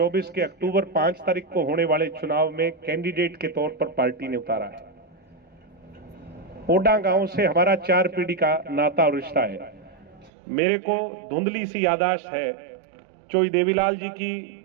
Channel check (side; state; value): left; drops out; at 10.3 s